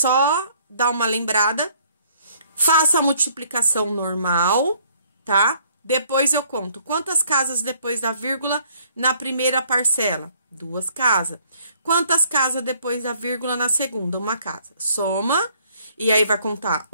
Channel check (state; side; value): inverted; both; correlation -0.62